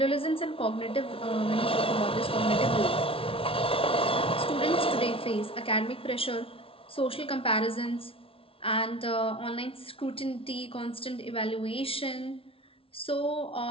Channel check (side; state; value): right; late; 0.26 ms